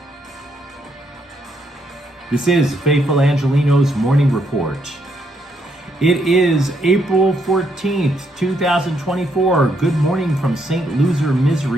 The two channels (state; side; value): normal; both; correlation 0.75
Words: This is Faithful Angelenos Morning Report. It is April 14th, 2024. Good morning from St. Loser